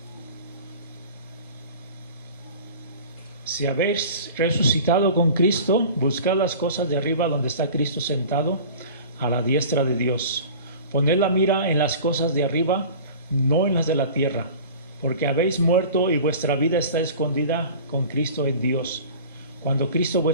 Si habéis resucitado con Cristo, buscad las cosas de arriba donde está Cristo sentado a la diestra de Dios. Poned la mira en las cosas de arriba, no en las de la tierra, porque habéis muerto y vuestra vida está escondida con Cristo en Dios. Cuando Cristo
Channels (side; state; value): both; inverted; correlation -0.41